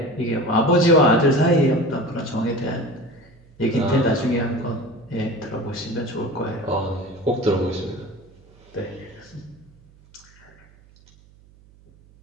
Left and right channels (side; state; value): right; noise; hum, 27 dB below the sound